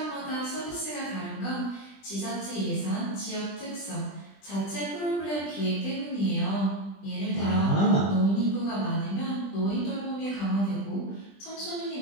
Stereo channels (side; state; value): right; late; 20 ms